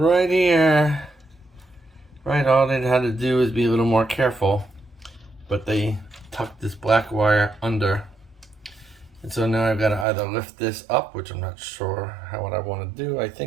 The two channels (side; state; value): left; drops out; at 10.1 s